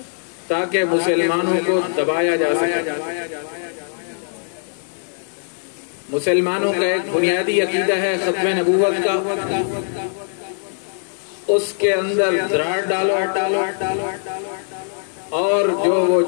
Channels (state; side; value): silent; right; digital silence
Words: تاکہ مسلمانوں کو دبایا جا سکے۔ مسلمانوں کا ایک بنیادی عقیدہ ہے ختم نبوت کا، اس کے اندر دراڑ ڈالو اور جو وہ